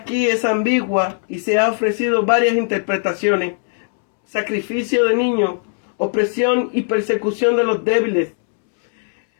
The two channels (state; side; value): silent; right; 67 dB below the other